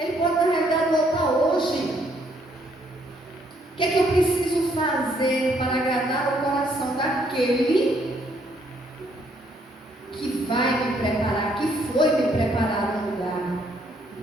pode na realidade voltar hoje. O que é que eu preciso fazer para agradar o coração daquele que vai me preparar, que foi me preparar no lugar?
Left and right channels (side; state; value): both; normal; correlation 0.69